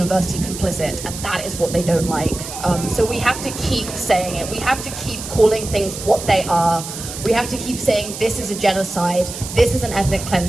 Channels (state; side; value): noise; right; hiss, 9 dB below the sound